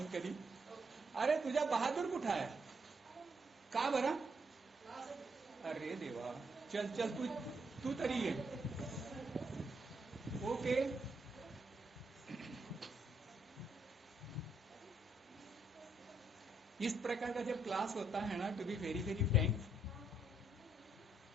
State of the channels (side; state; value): both; normal; correlation 0.74